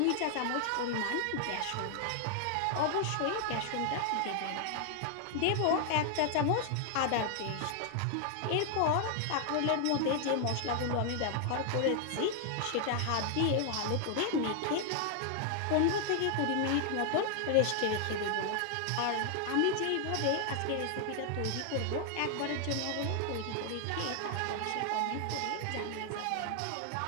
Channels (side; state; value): both; different; correlation 0.00